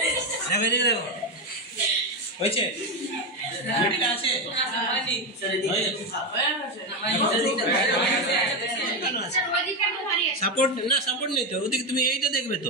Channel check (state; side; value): normal; both; correlation 0.11